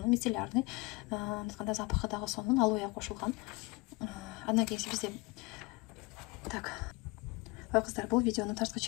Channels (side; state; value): right; quieter; 25.5 dB